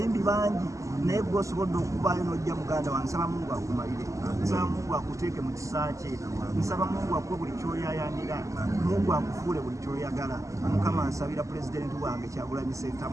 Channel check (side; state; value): left; late; 0.16 ms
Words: bangi naye gwe osobodde okuvaayo n'ojja muganda wange nsaba Mungu akumalire nsaba Mungu akuteeke mu kisa kye nsaba Mungu akuwe buli kyoyayanira Mungu akufuule buli kyoyagala Mukama nsabira pulezidenti wange Kyagulanyi